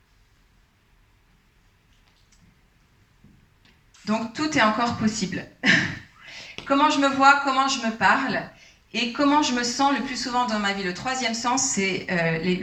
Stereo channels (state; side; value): identical; both; correlation 1.00